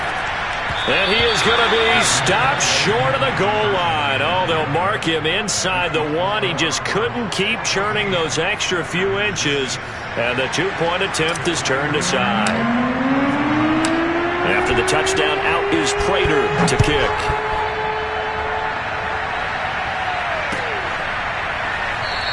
And he is going to be stopped short of the goal line. Oh, they'll mark him inside the 1. He just couldn't keep churning those extra few inches. And the 2-point attempt is turned aside. After the touchdown, out is Prater to kick.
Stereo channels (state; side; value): identical; both; correlation 1.00